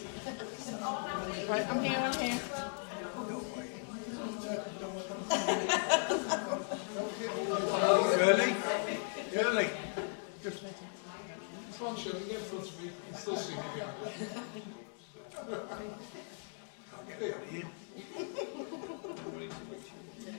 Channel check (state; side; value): silent; right; 53 dB below the other